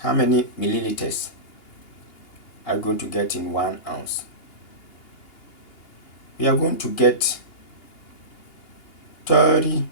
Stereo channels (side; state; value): right; late; 2.8 ms